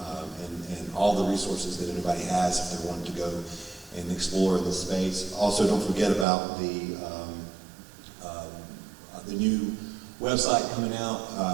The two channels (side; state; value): left; drops out; at 6.2 s